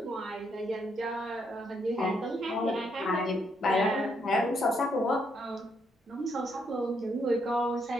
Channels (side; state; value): both; normal; correlation 0.75